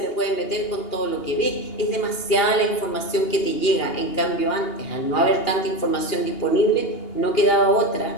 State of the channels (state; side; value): late; right; 2.8 ms